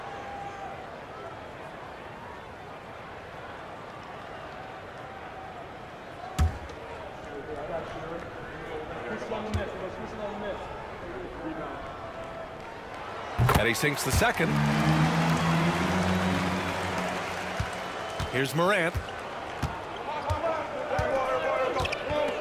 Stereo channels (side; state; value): both; identical; correlation 1.00